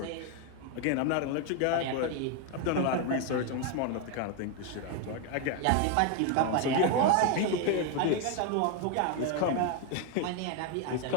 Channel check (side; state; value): both; different; correlation 0.01